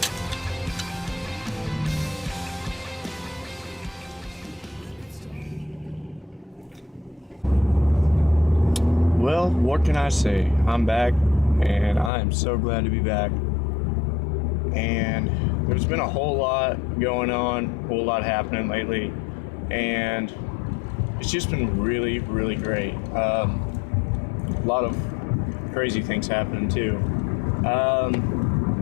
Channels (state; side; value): drops out; right; at 12.1 s